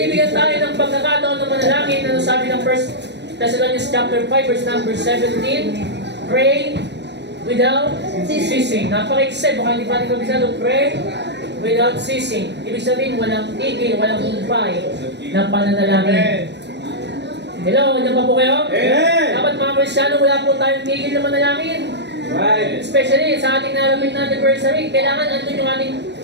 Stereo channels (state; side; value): late; left; 0.50 ms